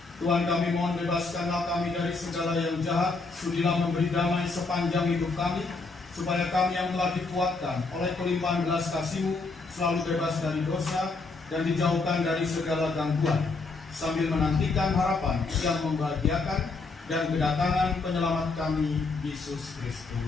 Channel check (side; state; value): right; quieter; 3.8 dB